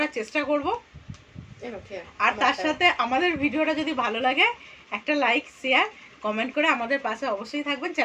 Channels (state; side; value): identical; both; correlation 1.00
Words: চেষ্টা করব। আর তার সাথে আমাদের ভিডিওটা যদি ভালো লাগে একটা লাইক, শেয়ার, কমেন্ট করে আমাদের পাশে অবশ্যই থাকবেন,